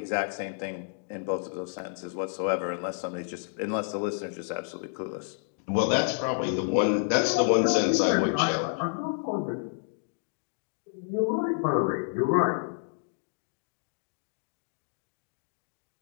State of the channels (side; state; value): right; silent; digital silence